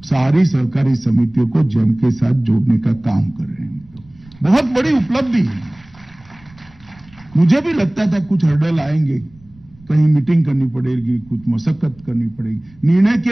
सारी सहकारी समितियों को जेम के साथ जोड़ने का काम कर रहे हैं। बहुत बड़ी उपलब्धि है। मुझे भी लगता था कुछ हर्डल आएंगे, कहीं मीटिंग करनी पड़ेगी, कुछ मशक्कत करनी पड़ेगी। निर्णय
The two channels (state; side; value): noise; right; rumble, 26 dB below the sound